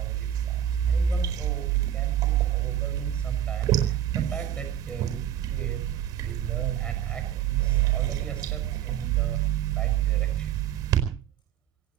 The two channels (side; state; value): left; quieter; 10.7 dB